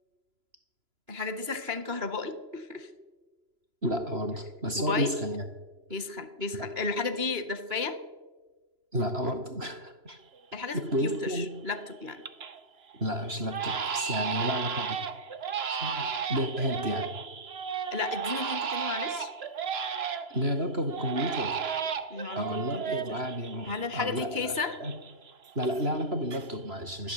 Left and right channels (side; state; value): left; late; 3.0 ms